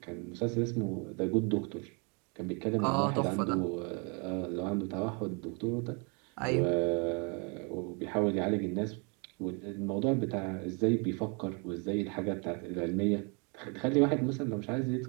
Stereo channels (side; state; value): left; quieter; 34.2 dB